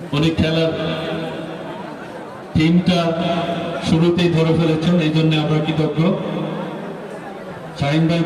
উনি খেলার টিমটা শুরুতেই ধরে ফেলেছেন, এই জন্য আমরা কৃতজ্ঞ। শাহিন ভাই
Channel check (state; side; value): identical; both; correlation 1.00